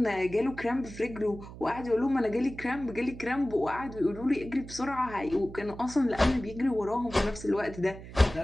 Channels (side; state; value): right; noise; hum, 14 dB below the sound